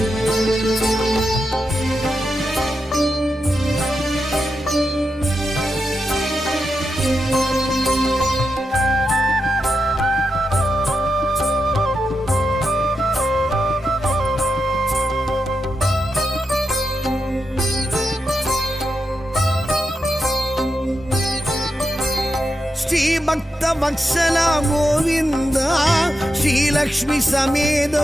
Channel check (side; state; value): both; normal; correlation 0.87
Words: ಭಕ್ತ ವತ್ಸಲ ಗೋವಿಂದ ಶ್ರೀಲಕ್ಷ್ಮಿ ಸಮೇತ